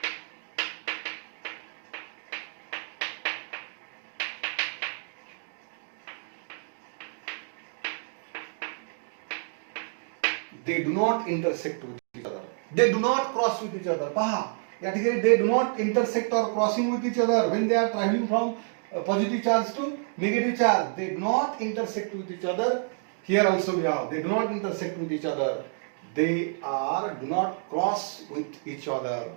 They do not intersect with each other. They do not cross with each other. पहा, या ठिकाणी they do not intersect or crossing with each other when they are traveling from positive charge to negative charge. They do not intersect with each other. Here also we have, they do not intersect with each other. They do not cross with each other.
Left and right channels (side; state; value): left; silent; 59 dB below the other